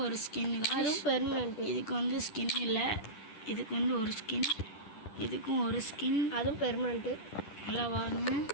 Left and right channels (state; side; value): late; right; 10 ms